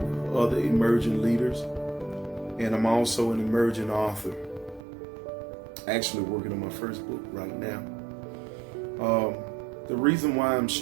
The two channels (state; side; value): drops out; left; at 4.8 s